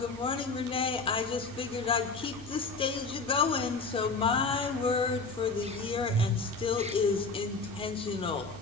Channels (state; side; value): quieter; right; 4.0 dB